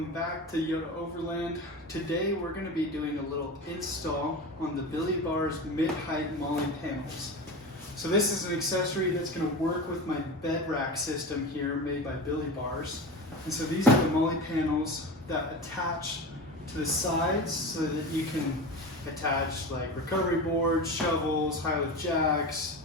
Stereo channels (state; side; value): normal; both; correlation 0.27